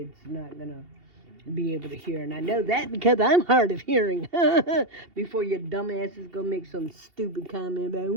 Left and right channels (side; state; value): left; late; 2.7 ms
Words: is not gonna be able to hear, and I know that because I'm hard of hearing. Before your dumbasses go make some stupid comment about,